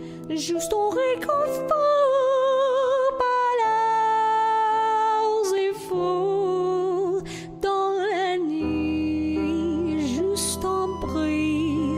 juste on réconfort, pas leurs efforts, dans la nuit, juste un bruit,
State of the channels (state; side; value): identical; both; correlation 1.00